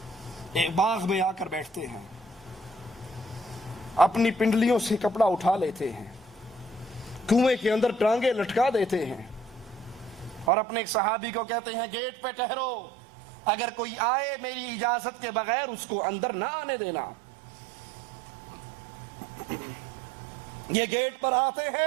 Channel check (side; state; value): left; drops out; at 10.5 s